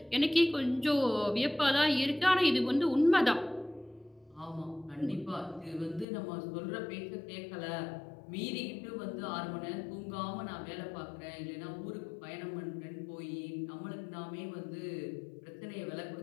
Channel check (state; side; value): drops out; right; at 6.1 s